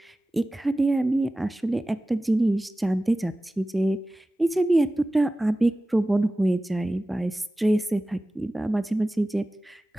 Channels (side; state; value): both; normal; correlation 0.96